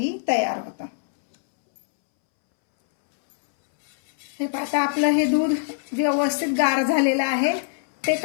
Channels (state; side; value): silent; right; 63 dB below the other